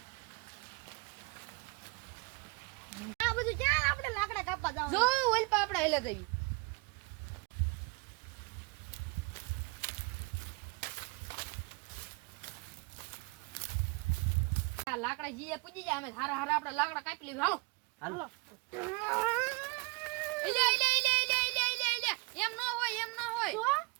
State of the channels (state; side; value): quieter; left; 27.8 dB